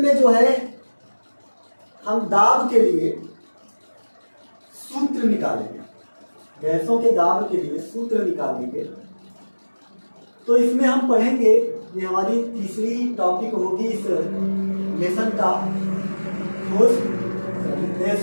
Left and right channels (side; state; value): both; inverted; correlation -1.00